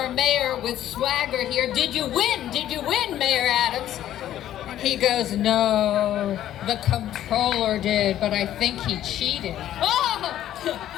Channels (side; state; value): right; quieter; 12.1 dB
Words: mayor with swagger here, did you win? Did you win, Mayor Adams? He goes, no, the comptroller did, but I think he cheated. Oh!